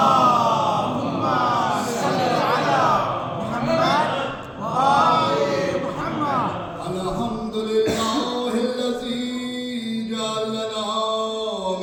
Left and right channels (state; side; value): identical; both; correlation 1.00